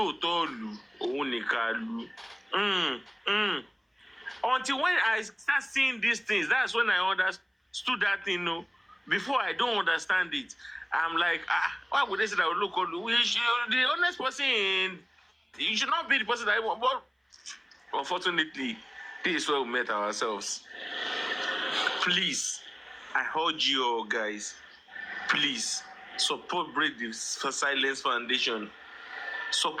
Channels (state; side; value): identical; both; correlation 1.00